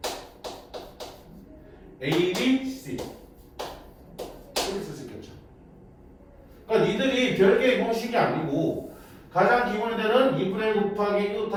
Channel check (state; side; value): identical; both; correlation 1.00